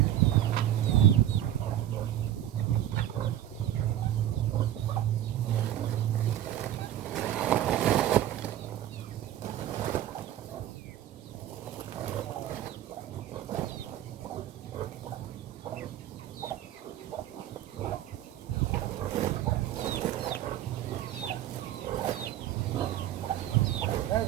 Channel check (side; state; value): left; quieter; 12.1 dB